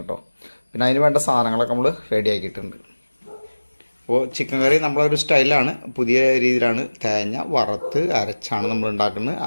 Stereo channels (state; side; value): inverted; both; correlation -1.00